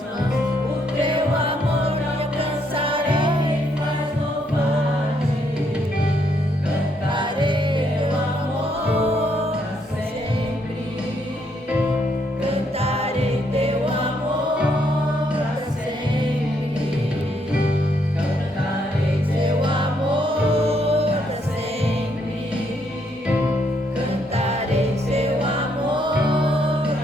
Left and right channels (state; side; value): normal; both; correlation 0.73